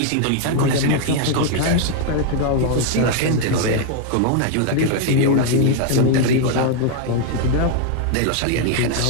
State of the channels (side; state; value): both; different; correlation 0.00